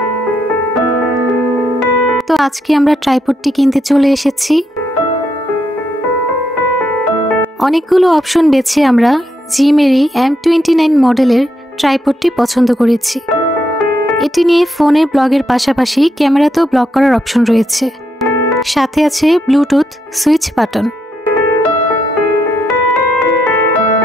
তো আজকে আমরা ট্রাইপডটি কিনতে চলে এসেছি। অনেকগুলো অপশন বেছে আমরা জিমেরি M29 মডেলের ট্রাইপডটি পছন্দ করেছি। এটি নিয়ে ফোনে ব্লগের পাশাপাশি ক্যামেরাতেও ব্লগ করার অপশন রয়েছে, সাথে আছে ব্লুটুথ সুইচ বাটন।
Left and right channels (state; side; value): normal; both; correlation 0.80